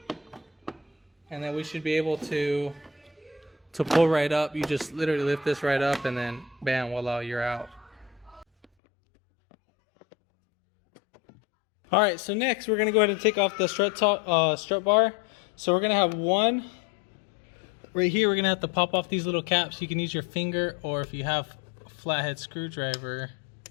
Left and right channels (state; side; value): drops out; right; at 8.7 s